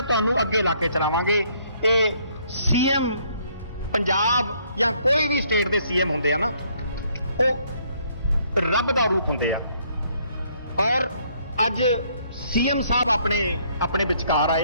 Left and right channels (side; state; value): both; inverted; correlation -0.67